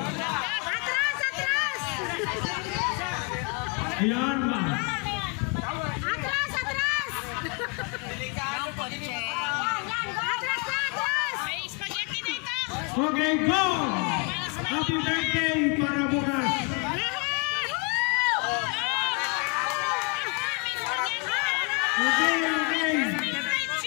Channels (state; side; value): quieter; right; 31.5 dB